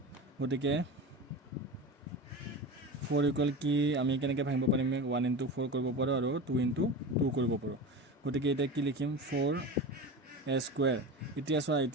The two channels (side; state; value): both; normal; correlation 0.28